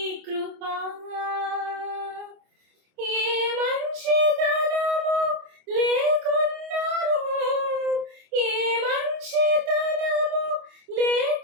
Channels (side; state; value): left; late; 27 ms